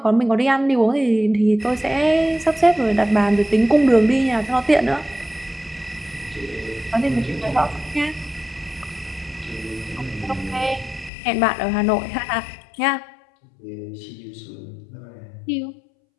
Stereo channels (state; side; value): drops out; right; at 11.1 s